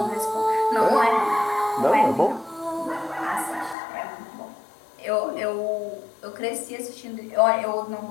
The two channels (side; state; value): right; drops out; at 3.8 s